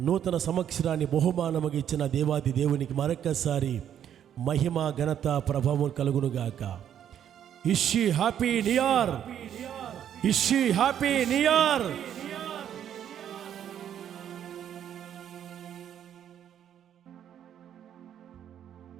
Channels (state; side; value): quieter; left; 9.8 dB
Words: నూతన సంవత్సరాన్ని బహుమానముగా ఇచ్చిన దేవాది దేవునికి మరొక్కసారి మహిమ, ఘనత, ప్రభావం కలుగునుగాక. ఇషి హ్యాపీ న్యూ ఇయర్, ఇషి హ్యాపీ న్యూ ఇయర్.